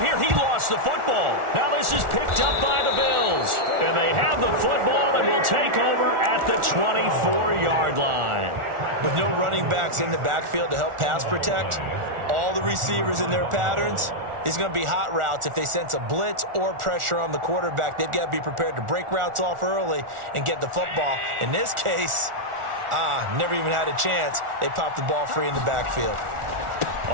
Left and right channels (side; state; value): left; late; 1.4 ms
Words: He lost the football. Now this is picked up by the Bills. And they have the football and will take over at the 24-yard line. With no running backs in the backfield to help pass protect, all the receivers in their patterns, it's going to be hot routes. If they sense a blitz or pressure on the quarterback, they've got to be prepared to break routes off early and get the football. In this case, never even had a chance. They popped the ball free in the backfield.